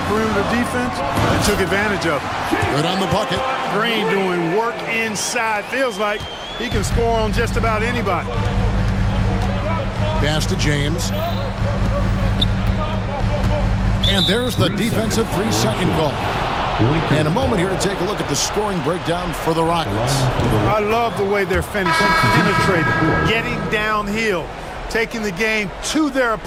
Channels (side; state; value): both; identical; correlation 1.00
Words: perimeter defense and took advantage of it. Good on the bucket. Green doing work inside. Feels like he can score on just about anybody. Pass to James. And there's the defensive 3-second call. And a moment here to take a look at the scoring breakdown for the Rockets. I love the way they're finishing, penetrating, getting downhill, taking the game to their